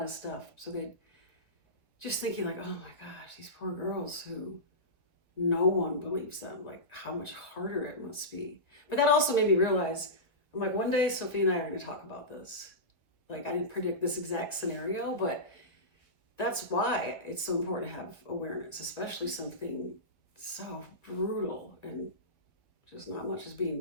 of stuff. So they just thinking like, oh my gosh, these poor girls who no one believes them, like how much harder it must be. But that also made me realize, I'm like, one day Sophie and I are going to talk about this. Like, I didn't predict this exact scenario, but that's why it's so important to have awareness, especially something so brutal and just not much is being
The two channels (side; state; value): right; late; 1.5 ms